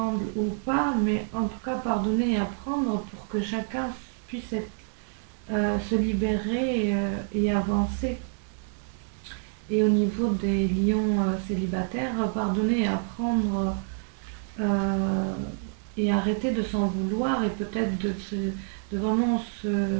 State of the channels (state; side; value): silent; left; digital silence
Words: ou pas, mais en tout cas pardonner et apprendre pour que chacun puisse se libérer et avancer. Et au niveau des lions célibataires, pardonner et apprendre et arrêter de s'en vouloir et peut-être de vraiment